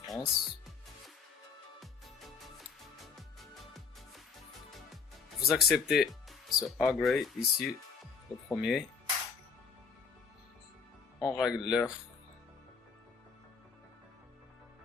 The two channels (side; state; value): right; quieter; 5.5 dB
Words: France. Vous acceptez ce agree ici, le premier. On règle l'heure.